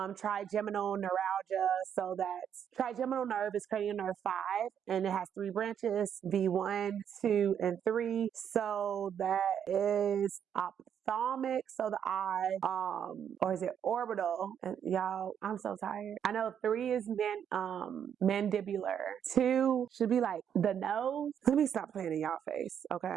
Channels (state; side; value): quieter; left; 8.6 dB